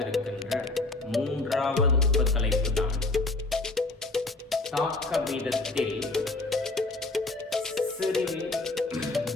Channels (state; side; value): quieter; right; 3.1 dB